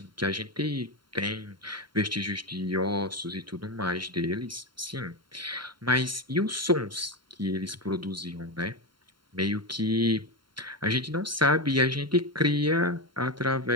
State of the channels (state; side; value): late; left; 0.73 ms